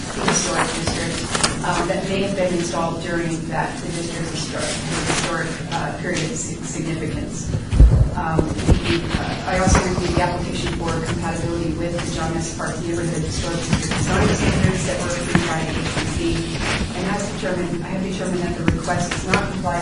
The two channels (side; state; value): both; identical; correlation 1.00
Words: historic district that may have been installed during the district's historic period of significance. I also reviewed the application for compatibility with the John S. Park Neighborhood Historic District design standards that were approved by HPC, and I have determined that the request does not comply